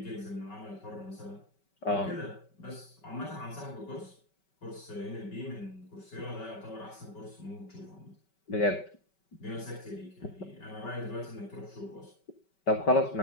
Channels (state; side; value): late; right; 5.2 ms